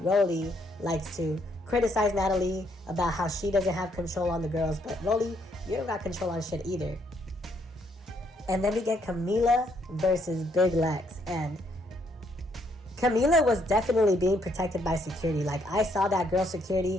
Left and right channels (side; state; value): both; normal; correlation 0.71